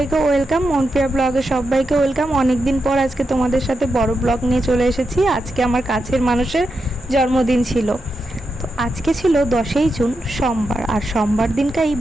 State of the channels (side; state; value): both; normal; correlation 0.87